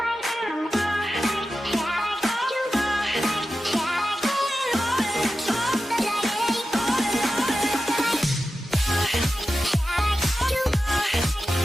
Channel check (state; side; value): normal; both; correlation 0.93